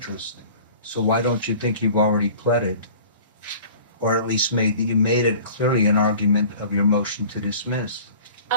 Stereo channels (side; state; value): both; inverted; correlation -0.45